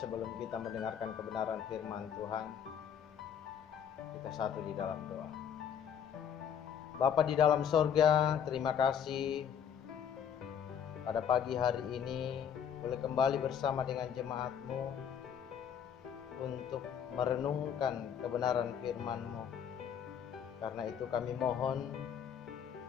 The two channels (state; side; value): quieter; right; 8.4 dB